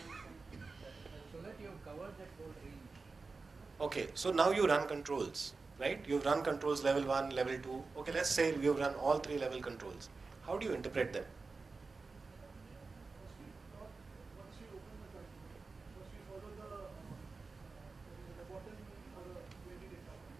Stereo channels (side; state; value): left; quieter; 4.1 dB